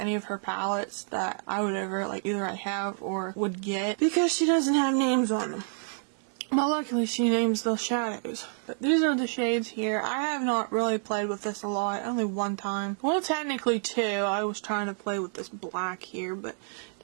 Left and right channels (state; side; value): silent; left; digital silence